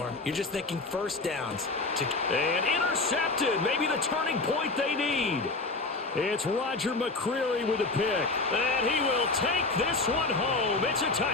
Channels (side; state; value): right; quieter; 3.5 dB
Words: You're just thinking first downs. And intercepted. Maybe the turning point they need. It's Roger McCreary with a pick. And he will take this one home. It's a